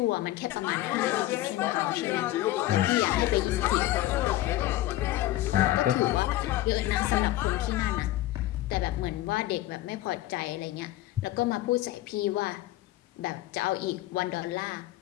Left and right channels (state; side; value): quieter; right; 15.5 dB